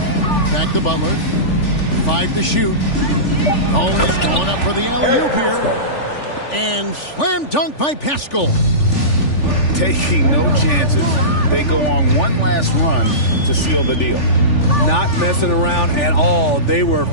Back to Butler. 5 to shoot. Oh, he's going up for the alley-oop here. And slam dunk by Pascal. Taking no chances. They go on one last run to seal the deal. Not messing around at all. They were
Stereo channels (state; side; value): late; right; 3.4 ms